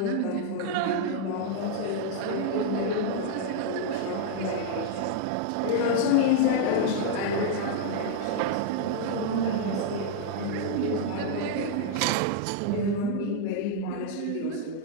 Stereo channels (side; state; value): both; different; correlation -0.01